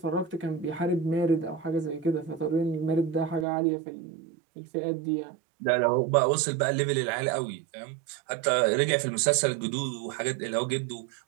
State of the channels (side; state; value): left; drops out; at 3.5 s